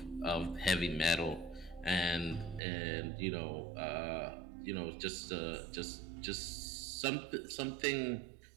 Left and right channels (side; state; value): left; drops out; at 2.6 s